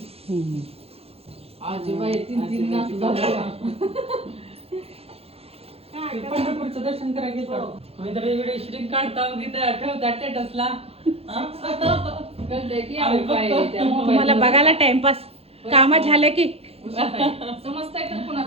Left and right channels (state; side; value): late; left; 0.29 ms